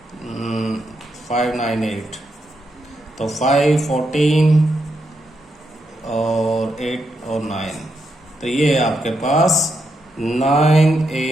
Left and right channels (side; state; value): both; normal; correlation 0.82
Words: 598, तो 5 14 और 8 और 9, तो ये आपके पास